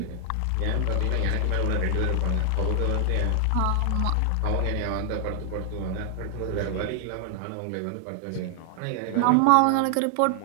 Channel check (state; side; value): different; both; correlation 0.00